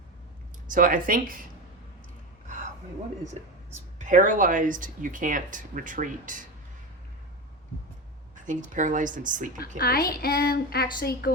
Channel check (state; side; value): normal; both; correlation 0.22